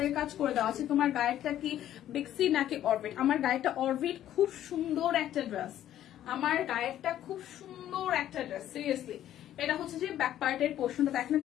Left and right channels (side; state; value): right; quieter; 11.9 dB